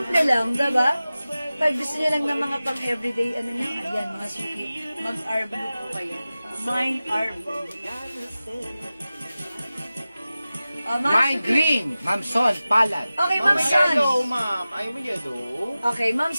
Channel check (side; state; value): both; inverted; correlation -0.96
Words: lang, diba? Pag gusto niyo lang ng mga pang-everyday, ano na, ayan, mga suki. Mag-R Blue po kayo. Mine R Blue. O, mga Mine suki. green, Ma'am Son, palad. Okay, Ma'am Son. ma'am. Ayaw mo yellow. Okay, Ma'am